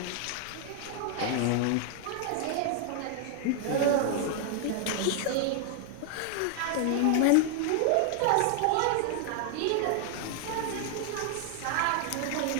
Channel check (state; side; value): different; both; correlation 0.00